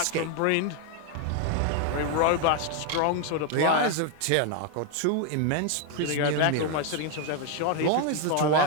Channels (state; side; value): different; both; correlation 0.01